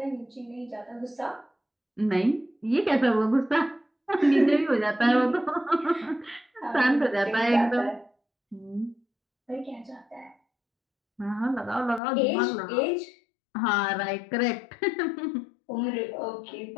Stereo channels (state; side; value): drops out; right; at 12.0 s